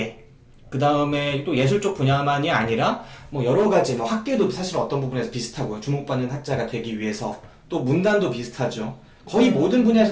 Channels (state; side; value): identical; both; correlation 1.00